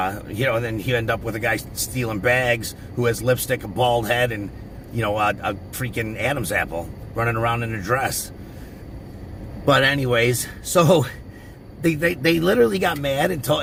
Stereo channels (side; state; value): both; identical; correlation 1.00